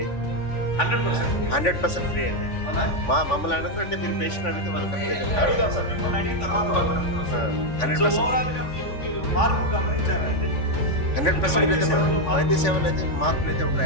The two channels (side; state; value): right; late; 3.5 ms